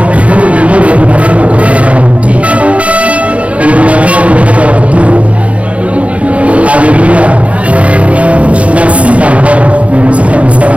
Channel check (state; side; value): late; left; 0.066 ms